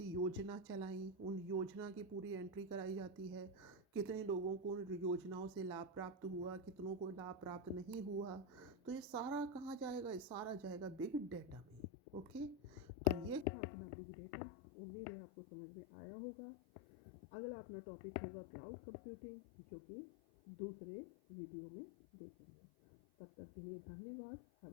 योजना चलाई, उन योजना की पूरी एंट्री कराई जाती है। कितने लोगों को उन योजनाओं से लाभ प्राप्त हुआ, कितनों को लाभ प्राप्त नहीं हुआ। तो ये सारा कहाँ जाएगा? ये सारा जाएगा बिग डेटा में। ओके, तो ये था अपना बिग डेटा। उम्मीद है आपको समझ में आया होगा। अगला अपना टॉपिक होगा क्लाउड कंप्यूटिंग, जो कि दूसरे वीडियो में देखेंगे। तब तक के लिए धन्यवाद।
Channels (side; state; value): right; drops out; at 13.5 s